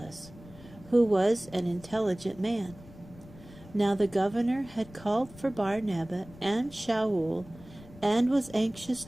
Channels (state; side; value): noise; left; rumble, 20 dB below the sound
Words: who was an intelligent man. Now the governor had called for Barnabas and Shaul, and was anxious